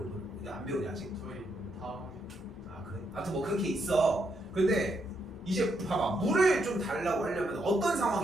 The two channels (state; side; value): normal; both; correlation 0.78